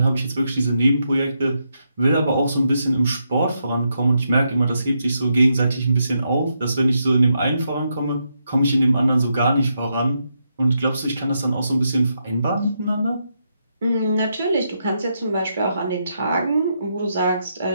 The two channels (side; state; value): both; inverted; correlation -0.82